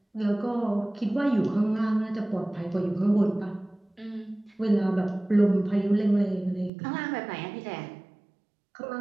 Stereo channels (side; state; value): left; drops out; at 6.7 s